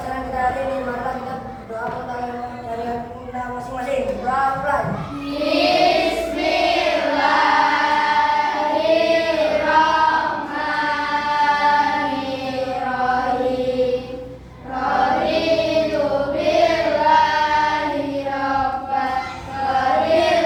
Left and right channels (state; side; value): identical; both; correlation 1.00